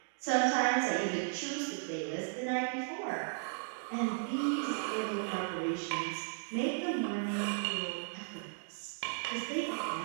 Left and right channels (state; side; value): silent; left; digital silence